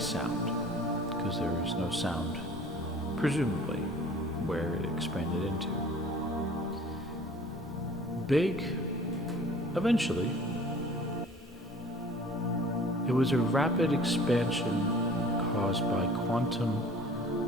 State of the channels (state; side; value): normal; both; correlation 0.48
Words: because there is no sound, presumably, where it expanded into. Big, eventually, it was a rapid expansion caused by quantum